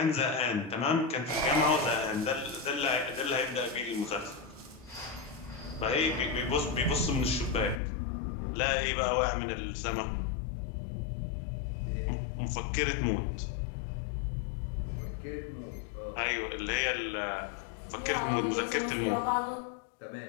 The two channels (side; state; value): right; drops out; at 7.8 s